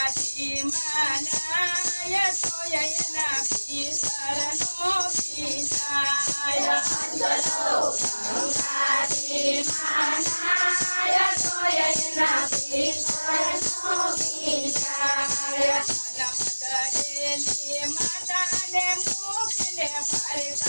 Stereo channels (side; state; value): both; inverted; correlation -1.00